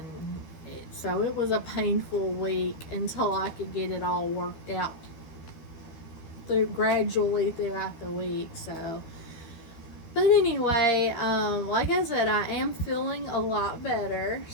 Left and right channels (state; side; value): late; right; 12 ms